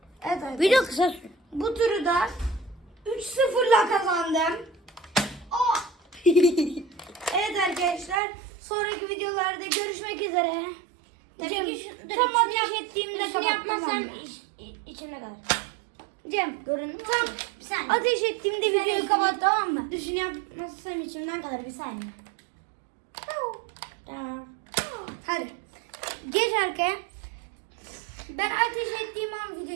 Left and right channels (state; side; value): drops out; left; at 8.2 s